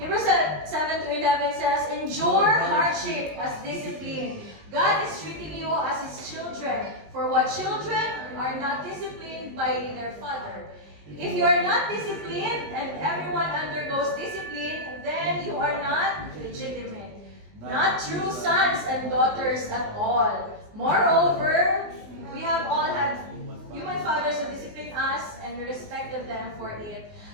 7-11 says, "Endure hardship as discipline. God is treating you as His children. For what children are not disciplined by their father? If you are not disciplined, and everyone undergoes discipline, then you are not legitimate, not true sons and daughters at all. Moreover, we have all had human fathers who disciplined us, and we respected them for it.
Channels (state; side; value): late; left; 19 ms